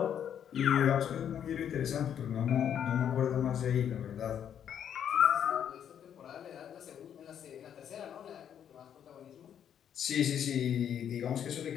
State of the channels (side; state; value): right; quieter; 9.1 dB